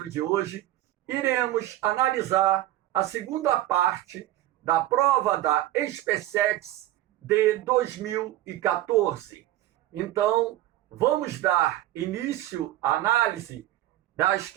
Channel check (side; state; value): left; quieter; 14.7 dB